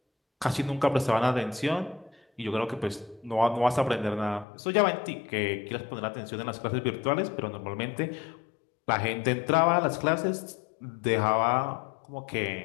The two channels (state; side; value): drops out; right; at 4.5 s